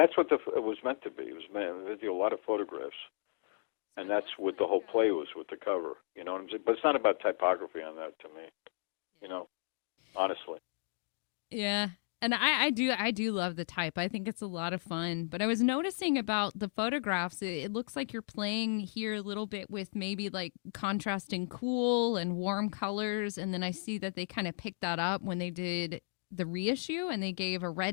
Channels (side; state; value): right; silent; digital silence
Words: what it was meant to be. It was meant to be a lot of photographs, and that's what the whole play was with the cover. You know what I'm saying? But it's not about typography on that to me. You know, honestly. Yeah, and I do love the type. I think it's a lot of fun. But I was noticing about the photographs. It looks like you're playing here a little bit with maybe like contrasting cool and warm colors, and then I see that they kind of picked that up when they did the reissue, and they gave a